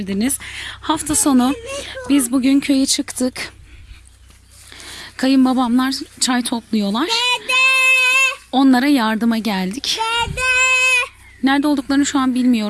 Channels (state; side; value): identical; both; correlation 1.00